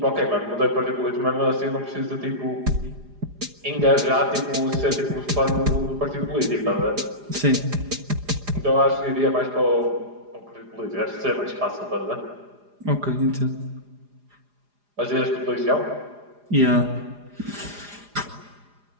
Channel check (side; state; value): left; late; 4.9 ms